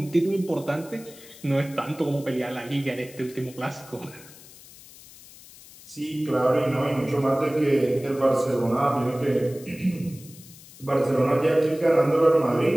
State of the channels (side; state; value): left; noise; hiss, 20 dB below the sound